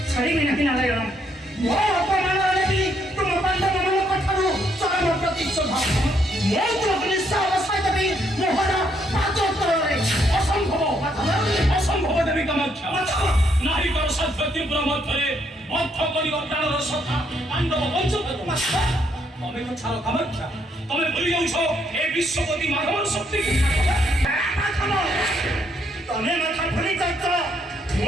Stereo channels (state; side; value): normal; both; correlation 0.73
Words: ଛାଡ଼ିବି ନାହିଁ ନାରାୟଣ ମୋ ଅପମାନରେ ବି ତୁମ ପାଣ୍ଡବମାନଙ୍କ ଠାରୁ ଚରମ ପ୍ରତିଶୋଧ ମୁଁ ତୁମକୁ ନିଶ୍ଚୟ ଅବସାଇ ଦେବି ମୋହର ପାଦତଳରେ ଅସମ୍ଭବ ଦେବୀ କାମାକ୍ଷା ନାରୀଙ୍କର ସାଧ୍ୟ ତୀବ୍ର ମଧ୍ୟରେ ବଦ୍ଧ କରିବ ପ୍ରାଣର ସଖା ପାଣ୍ଡବ ବଞ୍ଚକ ତମେ ତ ଛାଡ଼ କାମାକ୍ଷା ତମେ ଭୁଲି ଯାଉଛ ଏ ବିଶ୍ୱପତି ମାଧବର ଶକ୍ତିକୁ ତମେ ମାଥା ଭୁଲି ଯାଉଛ